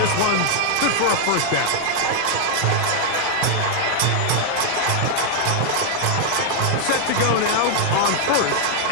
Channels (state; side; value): different; both; correlation 0.00